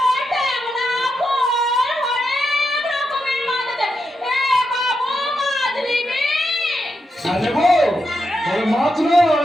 ট্যাংরা, বোয়াল, অনেক রকমের মাছ আছে। এ বাবু, মাছ নিবি? আরে বউ, ওই মাছ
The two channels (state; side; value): normal; both; correlation 0.85